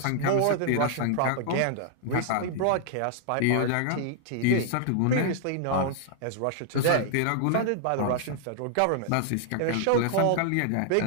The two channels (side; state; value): both; different; correlation -0.01